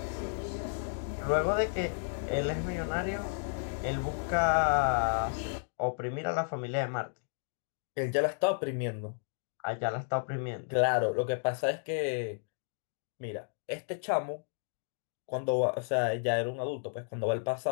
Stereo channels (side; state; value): right; silent; digital silence